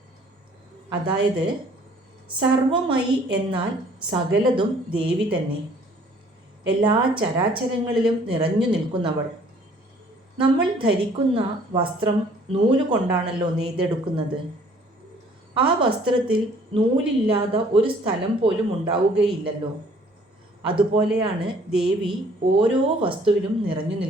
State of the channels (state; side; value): normal; both; correlation 0.57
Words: അതായത് സർവമയി എന്നാൽ സകലതും ദേവി തന്നെ, എല്ലാ ചരാചരങ്ങളിലും നിറഞ്ഞു നിൽക്കുന്നവൾ. നമ്മൾ ധരിക്കുന്ന വസ്ത്രം നൂല് കൊണ്ടാണല്ലോ നെയ്തെടുക്കുന്നത്. ആ വസ്ത്രത്തിൽ നൂലില്ലാതെ ഒരു സ്ഥലം പോലും ഉണ്ടാവുകയില്ലല്ലോ. അതുപോലെയാണ് ദേവി ഓരോ വസ്തുവിലും നിറഞ്ഞു